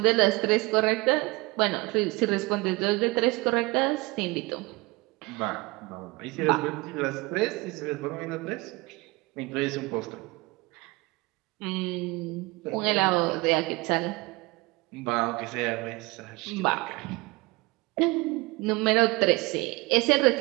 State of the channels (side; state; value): left; quieter; 24.0 dB